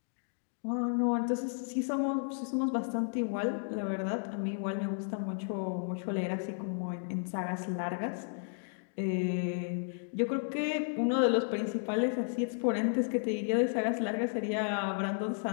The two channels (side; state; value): right; silent; digital silence